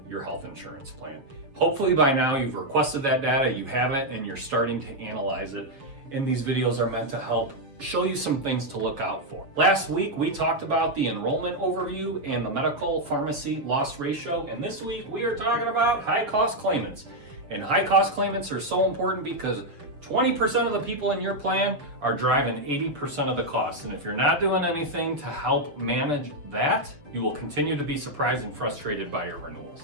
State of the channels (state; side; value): late; left; 7.2 ms